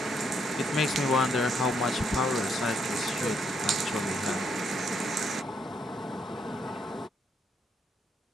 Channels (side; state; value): both; normal; correlation 0.74